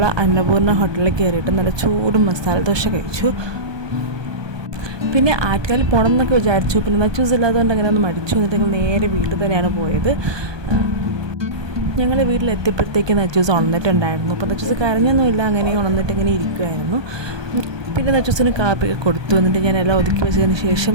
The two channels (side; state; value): left; late; 1.2 ms